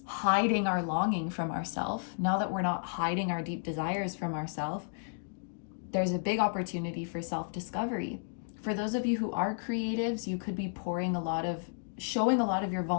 hiding our longing from ourselves, now that we're not hiding our deep desires from ourselves, there's a big opportunity for self-discovery. For those of you who are creatives, you could be showing a lot of your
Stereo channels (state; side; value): silent; right; digital silence